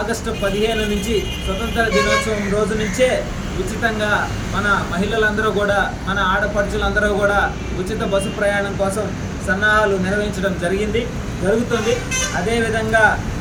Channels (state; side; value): identical; both; correlation 1.00